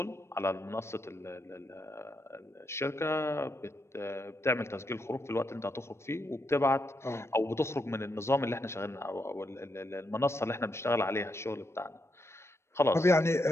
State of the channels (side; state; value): right; late; 0.13 ms